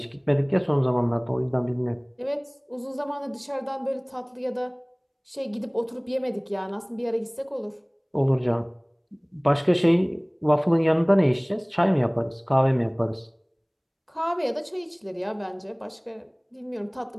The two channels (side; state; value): both; identical; correlation 1.00